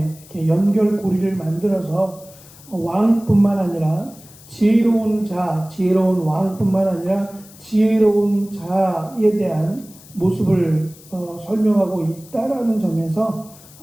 이렇게 연결고리를 만들어서 왕뿐만 아니라 지혜로운 왕뿐만 아니라 지혜로운 자에 대한 모습을 설명하고 있다라는 점에서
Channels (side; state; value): left; noise; hiss, 22 dB below the sound